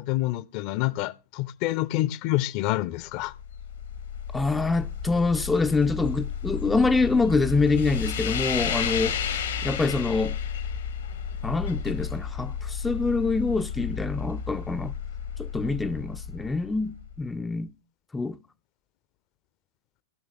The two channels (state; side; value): quieter; right; 4.6 dB